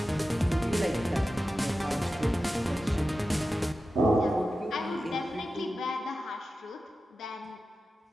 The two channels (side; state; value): both; normal; correlation 0.93